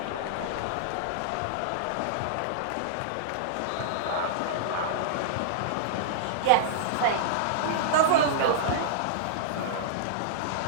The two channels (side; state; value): both; different; correlation -0.02